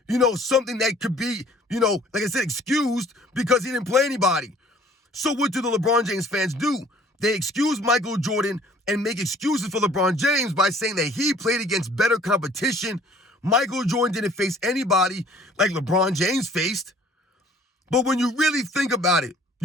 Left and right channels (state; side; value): normal; both; correlation 0.54